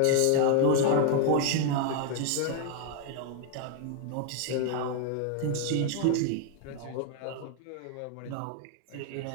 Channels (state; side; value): different; both; correlation 0.00